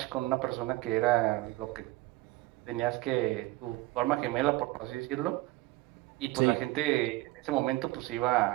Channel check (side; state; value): left; quieter; 19.3 dB